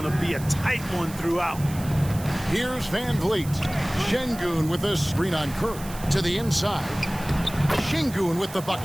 to be a tight one throughout. Here's Van Vliet. Sengun with a screen on Curry. To the inside. Sengun with the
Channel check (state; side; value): noise; right; hiss, 15 dB below the sound